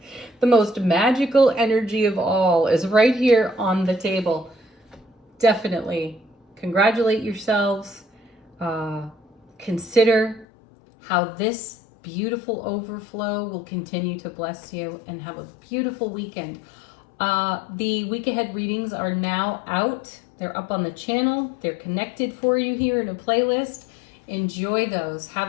most magical energy of all is right here on the table. Definitely congratulate yourselves. Consider how this beautiful overflow will continue to bless you, and have a beautiful weekend. The week ahead readings are now out. They're up on the channel. They're connected for you here in a playlist. Enjoy those.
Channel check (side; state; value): right; drops out; at 10.5 s